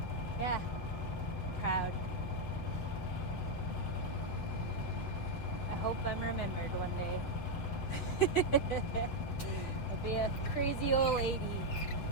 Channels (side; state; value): right; late; 7.9 ms